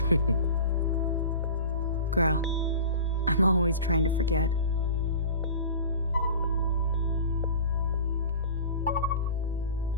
Girl, I'm always trying to forget.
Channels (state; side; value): inverted; both; correlation -0.37